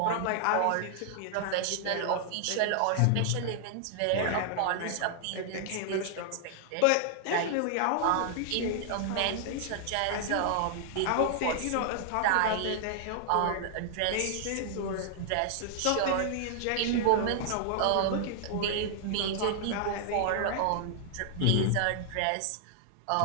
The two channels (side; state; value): both; different; correlation -0.01